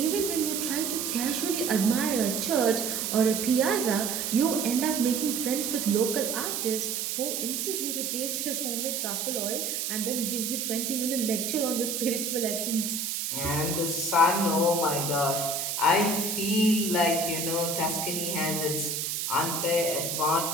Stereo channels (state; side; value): noise; right; hiss, 2 dB below the sound